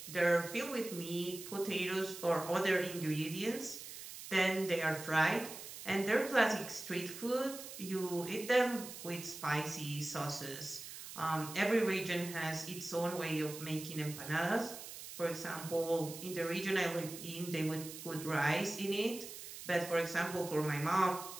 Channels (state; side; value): noise; right; hiss, 11 dB below the sound